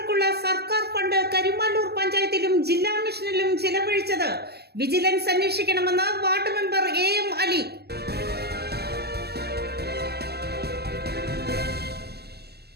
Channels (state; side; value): late; left; 0.47 ms